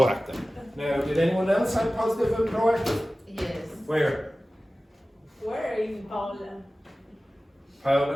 Now, did anyone else have positive and proactive? Yes. Where? Where in Paula?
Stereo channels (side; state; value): both; normal; correlation 0.96